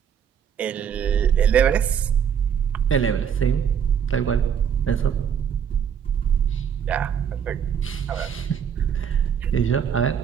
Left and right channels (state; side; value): quieter; left; 8.0 dB